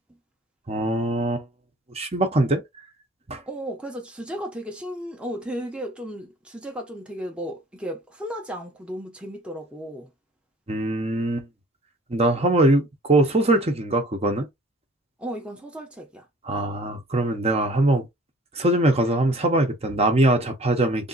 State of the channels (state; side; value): normal; both; correlation 0.51